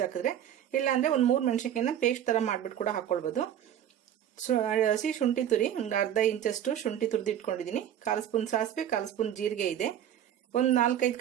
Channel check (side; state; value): left; quieter; 10.3 dB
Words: ಇಲ್ಲ ಅಂದ್ರೆ ಒಂದು 3 ಮೆಣಸಿನಕಾಯಿನ ಪೇಸ್ಟ್ ತರ ಮಾಡ್ಬಿಟ್ಟು ಕೂಡ ಹಾಕೊಳ್ಬಹುದು. ಹಸಿ ಶುಂಠಿ ತುರಿ ಒಂದು ಅರ್ಧ ಇಂಚಷ್ಟು ಶುಂಠಿ ತುರಿದು ಇಟ್ಕೊಂಡಿದ್ದೀನಿ. 1/4 ಸ್ಪೂನ್ ಸಾಸಿವೆ, 1/4 ಸ್ಪೂನ್ ಜೀರಿಗೆ ಇದೆ. ಒಂದು 4-5